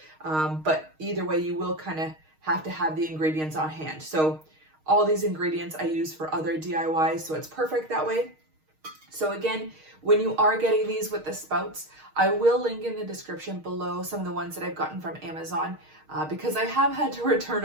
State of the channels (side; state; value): left; late; 6.4 ms